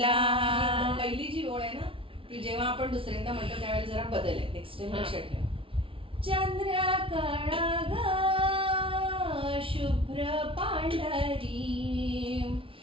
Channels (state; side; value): late; left; 0.26 ms